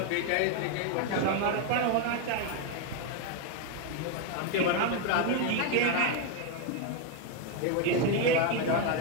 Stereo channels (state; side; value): different; both; correlation 0.01